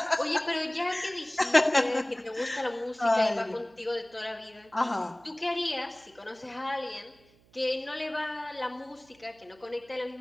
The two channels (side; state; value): right; noise; hum, 30 dB below the sound